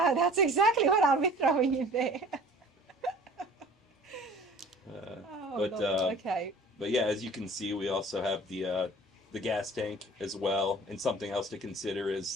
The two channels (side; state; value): both; normal; correlation 0.47